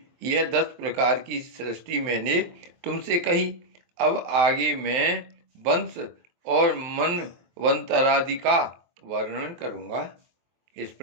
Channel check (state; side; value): late; left; 23 ms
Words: यह 10 प्रकार की सृष्टि मैंने तुमसे कही। अब आगे मैं वंश और मनवंतरादि का वर्णन करूंगा। इस